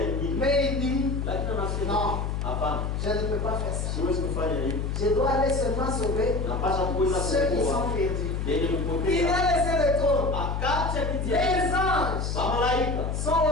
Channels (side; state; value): left; noise; hum, 1 dB below the sound